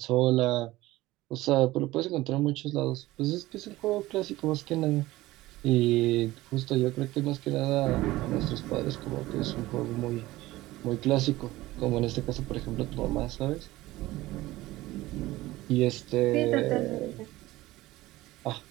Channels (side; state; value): left; quieter; 17.8 dB